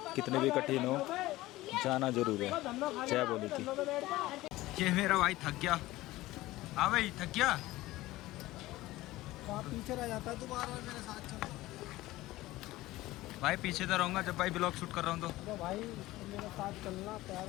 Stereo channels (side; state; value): right; quieter; 17.7 dB